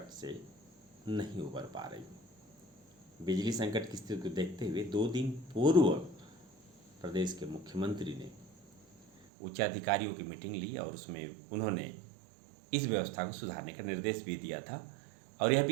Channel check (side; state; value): left; drops out; at 9.2 s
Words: से नहीं उबर पा रही। बिजली संकट की स्थिति को देखते हुए 2 दिन पूर्व प्रदेश के मुख्यमंत्री ने उच्च अधिकारियों की मीटिंग ली और उसमें उन्होंने इस व्यवस्था को सुधारने का निर्देश भी दिया था। और यह